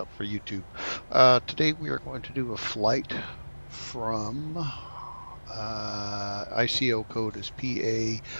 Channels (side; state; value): both; inverted; correlation -1.00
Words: for YouTube. Today we are going to do a flight from ICO code is